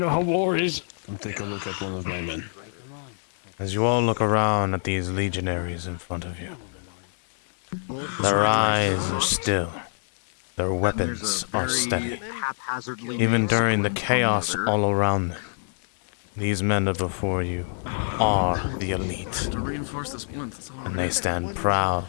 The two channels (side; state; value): right; silent; 57 dB below the other